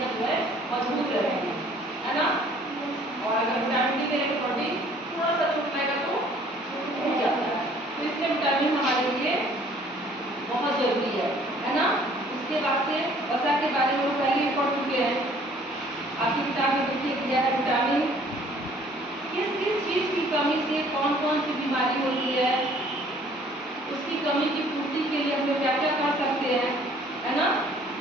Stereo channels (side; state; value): both; normal; correlation 0.56